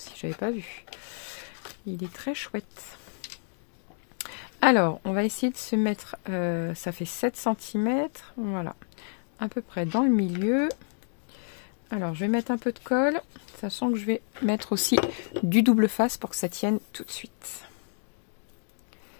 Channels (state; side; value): silent; right; digital silence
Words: j'avais pas vu. Il est très chouette. Alors, on va essayer de se mettre, ça fait 7 cm, voilà, à peu près dans le milieu. Alors, je vais mettre un peu de colle, sachant que je vais mettre aussi du double face pour que ça tienne tout de suite.